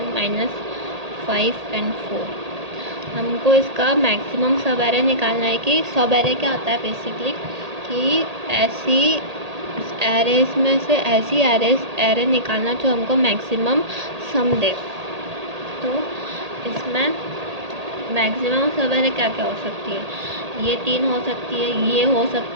-5 एंड 4। हमको इसका मैक्सिमम सब एरे निकालना है कि सब एरे क्या होता है बेसिकली कि ऐसी एरेज में से ऐसी एरे निकालना जो हमको मैक्सिमम सम दे। तो इसमें मैक्सिमम सब एरे क्या क्या हो सकती है, ये 3 हो सकती है, ये हो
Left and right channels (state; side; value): late; left; 1.8 ms